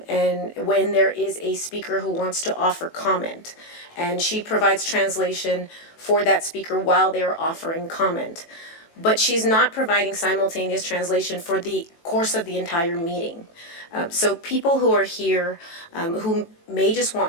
when there is a speaker who wants to offer comment, and she provides translation for that speaker while they're offering comment, but she's not providing simultaneous translation for the course of the entire meeting. So people who are here, who may just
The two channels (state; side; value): late; right; 18 ms